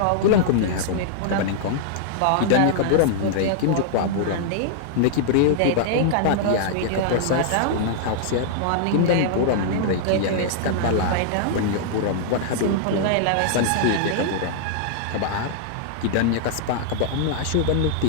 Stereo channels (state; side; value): different; both; correlation -0.01